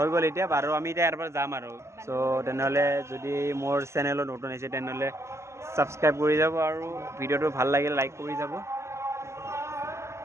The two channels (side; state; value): left; late; 0.13 ms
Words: গ'ল এতিয়া আৰু আমি এতিয়া ইয়াৰ পৰা যাম আৰু সো তেনেহ'লে যদি মোৰ চেনেলত নতুন আহিছে তেনেহ'লে ছাবস্ক্ৰাইব কৰি যাব আৰু ভিডিঅ'টো ভাল লাগিলে লাইক কৰি যাব